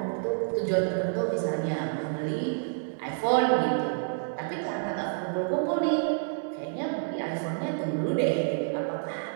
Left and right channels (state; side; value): silent; left; digital silence